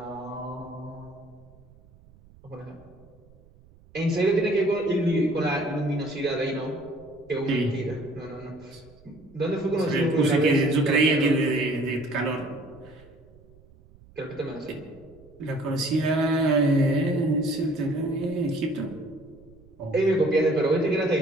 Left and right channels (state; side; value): noise; right; rumble, 26 dB below the sound